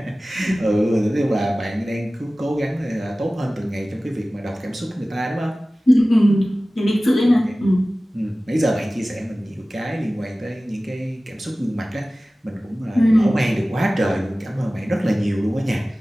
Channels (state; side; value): normal; both; correlation 0.97